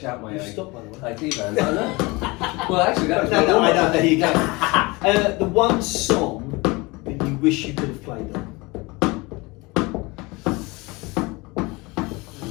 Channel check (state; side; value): quieter; right; 24.6 dB